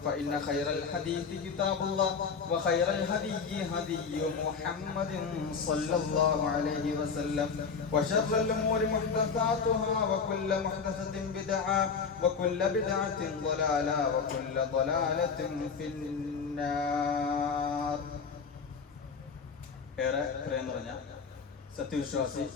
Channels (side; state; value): right; quieter; 5.6 dB